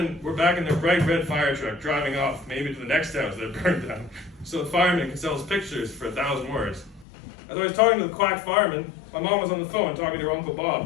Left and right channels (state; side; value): drops out; right; at 7.1 s